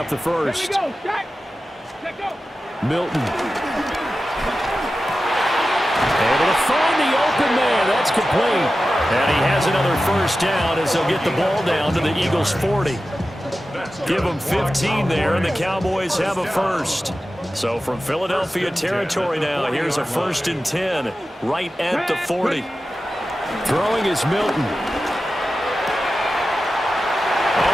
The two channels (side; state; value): both; normal; correlation 0.93